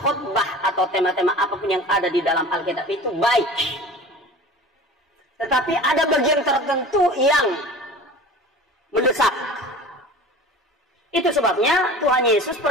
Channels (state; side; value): normal; both; correlation 0.38